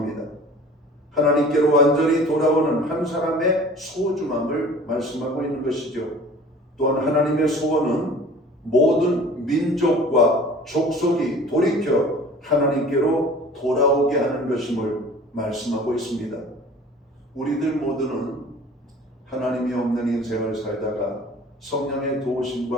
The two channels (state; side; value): normal; both; correlation 0.45